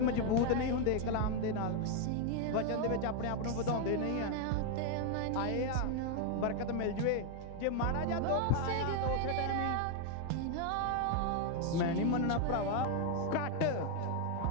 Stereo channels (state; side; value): different; both; correlation 0.00